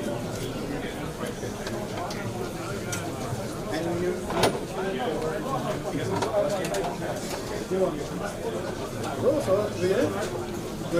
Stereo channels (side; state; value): both; identical; correlation 1.00